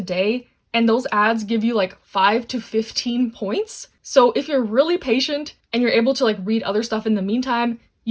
day, and those ads give you 5 to 15 points. So if you're really patient and you're able to read other stuff in the meantime,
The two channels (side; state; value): both; identical; correlation 1.00